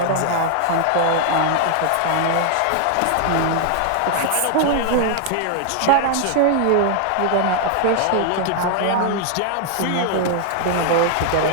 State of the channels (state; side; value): different; both; correlation 0.00